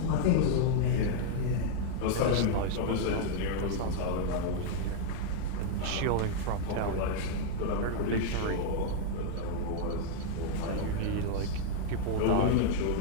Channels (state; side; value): different; both; correlation -0.01